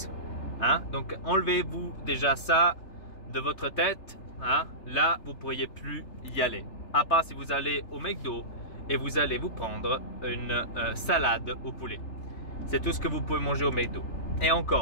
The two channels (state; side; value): late; right; 3.4 ms